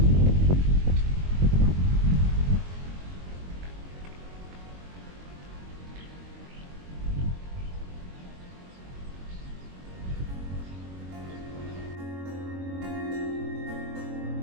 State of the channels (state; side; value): late; left; 22 ms